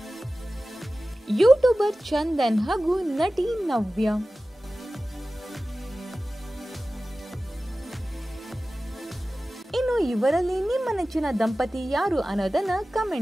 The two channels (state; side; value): normal; both; correlation 0.96